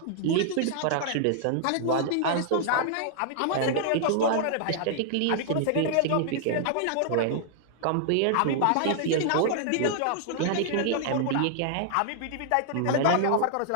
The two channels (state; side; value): different; both; correlation -0.01